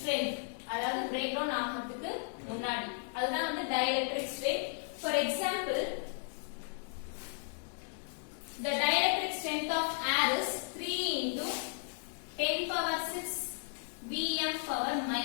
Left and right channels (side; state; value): right; silent; 55 dB below the other